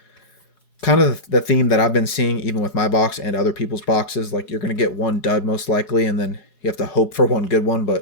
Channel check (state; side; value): late; right; 4.7 ms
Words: kind of the theme that I've been seeing even with my box and other people's boxes, like you're going to get one dud most likely, and then you have to hope for one good one,